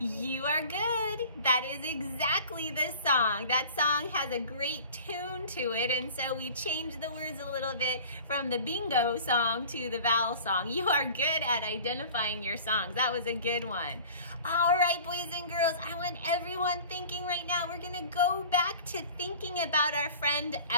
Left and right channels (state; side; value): inverted; both; correlation -0.44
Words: are good. good? That is exactly the song. That song has a great tune to it, and so we changed the words a little bit from the bingo song to the vowel song. You are good at identifying your songs. That was a good one. All right, boys and girls, I want everyone thinking right now, we're gonna go back to thinking about our friend